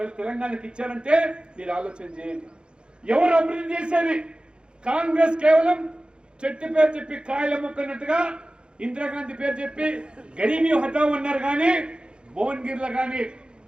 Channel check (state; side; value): late; left; 0.053 ms